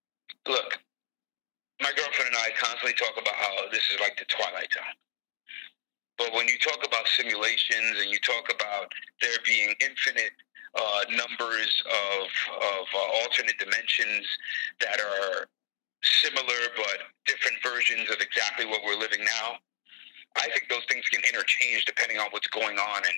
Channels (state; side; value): silent; right; digital silence